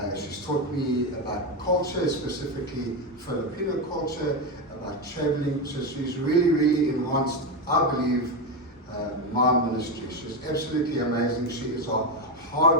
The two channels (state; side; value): normal; both; correlation 0.12